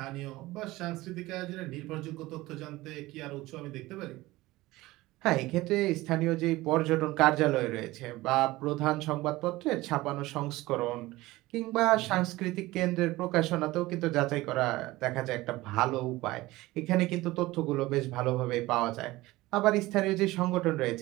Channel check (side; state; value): left; quieter; 19.0 dB